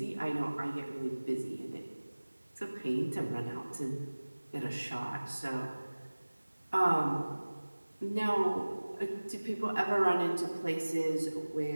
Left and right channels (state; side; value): inverted; both; correlation -1.00